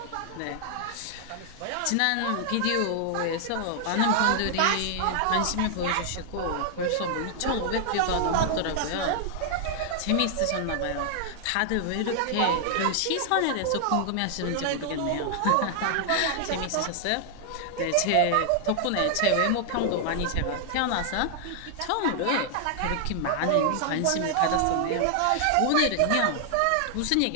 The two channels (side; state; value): both; different; correlation 0.00